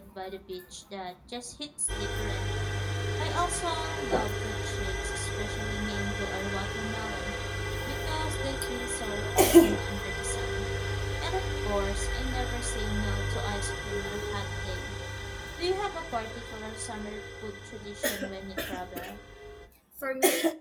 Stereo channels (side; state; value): both; identical; correlation 1.00